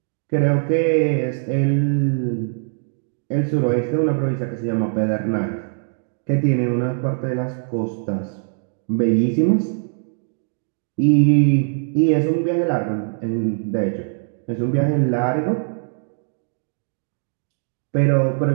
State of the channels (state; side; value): silent; left; 64 dB below the other